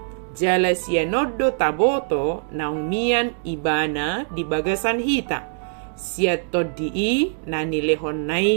Jala sianodo taboto naumian ibana di bagasan hita. Siatodii nani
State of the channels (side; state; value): left; silent; 64 dB below the other